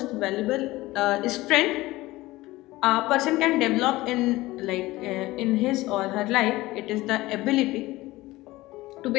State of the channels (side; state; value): right; quieter; 18.8 dB